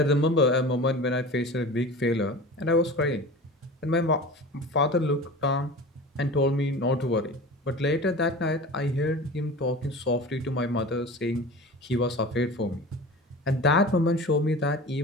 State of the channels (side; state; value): both; normal; correlation 0.35